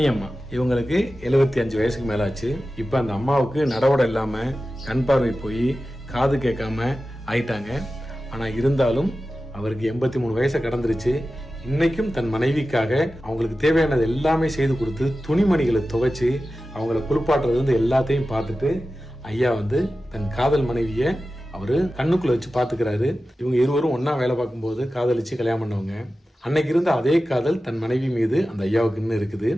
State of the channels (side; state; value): both; normal; correlation 0.94